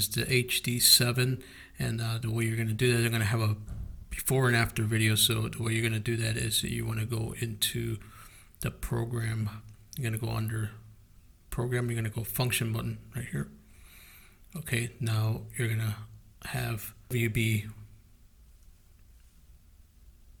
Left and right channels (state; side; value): identical; both; correlation 1.00